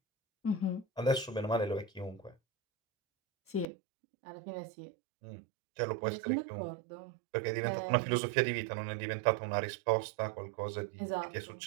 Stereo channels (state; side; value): drops out; left; at 3.7 s